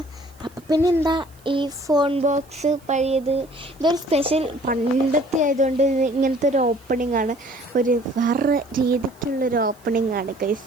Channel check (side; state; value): right; noise; hiss, 29 dB below the sound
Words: അപ്പം പിന്നെ എന്താ ഈ ഫോൺ ബോക്സ് പഴയത് ഇതൊരു സ്പെഷ്യൽ പണ്ടത്തെ ആയതുകൊണ്ട് ഇങ്ങനത്തെ ഒരു ഓപ്പണിംഗ് ആണ്. ഒരു വേറെ രീതിക്കുള്ളൊരു ഓപ്പണിംഗ് ആണ്